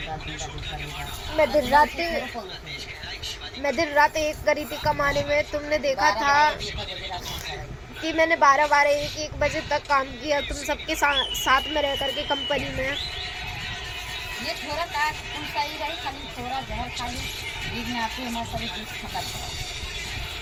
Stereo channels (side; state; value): both; identical; correlation 1.00